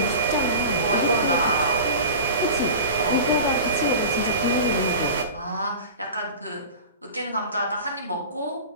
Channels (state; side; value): inverted; both; correlation -0.34